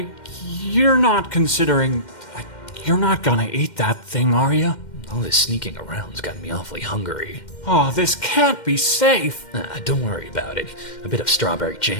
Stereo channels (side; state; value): right; late; 2.1 ms